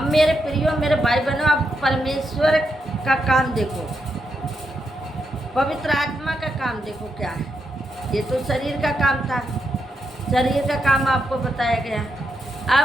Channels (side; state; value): both; normal; correlation 0.83